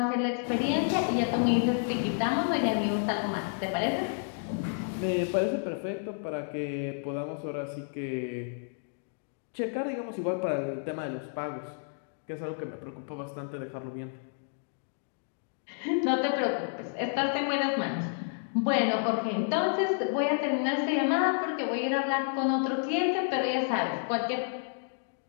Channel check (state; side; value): silent; right; digital silence